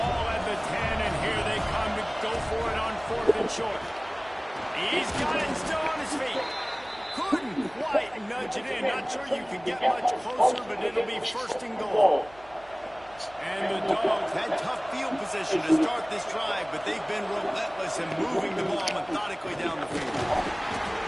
at the 10, and here they come to go for it on 4th and short. He's got it still on his feet. Couldn't quite nudge it in. Not sure you can get much closer, but it'll be 1st and goal. And the Dogs had tough field position to start this drive, but they've been relentless in moving the ball methodically down the field.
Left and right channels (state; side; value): noise; right; hum, 24 dB below the sound